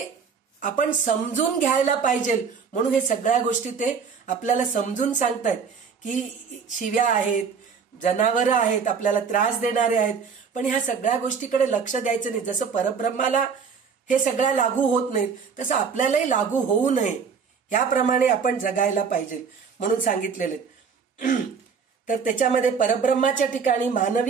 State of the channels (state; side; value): quieter; left; 6.0 dB